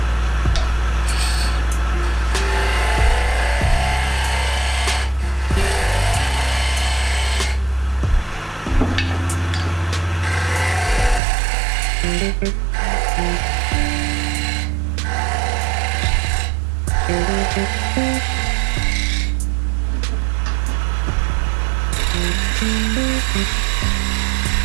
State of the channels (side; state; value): left; drops out; at 11.2 s